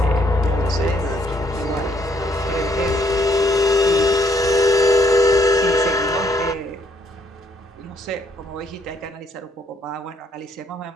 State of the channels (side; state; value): both; normal; correlation 0.69